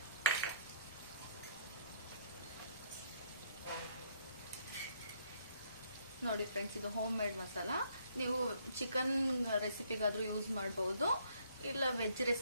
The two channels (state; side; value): inverted; both; correlation -0.66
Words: ನೋಡಿ ಫ್ರೆಂಡ್ಸ್, ಇದು ಹೋಮ್ ಮೇಡ್ ಮಸಾಲ. ನೀವು ಚಿಕನ್ ರೆಸಿಪಿಗಾದ್ರೂ ಯೂಸ್ ಮಾಡ್ಬೋದು, ಇಲ್ಲ ವೆಜ್